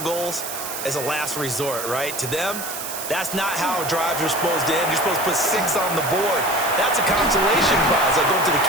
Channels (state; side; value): noise; right; hiss, 7 dB below the sound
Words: goals as a last resort, right? To them, that's not how drives are supposed to end. You're supposed to put 6 on the board. That's a consolation prize. Like going to the